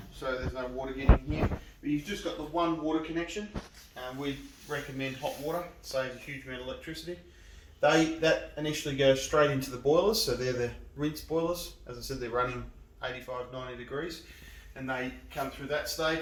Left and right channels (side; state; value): both; identical; correlation 1.00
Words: so there's no water getting here. But you've just got the one water connection, and we recommend hot water. It saves a huge amount of electricity. That initially goes straight into the boilers, so they're the rinse boilers. As I said, they're running 85, 90 degrees, and they come through that